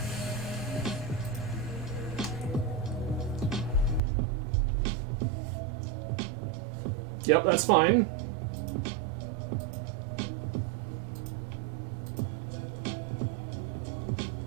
Yep, that's fine.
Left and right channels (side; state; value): left; drops out; at 4.0 s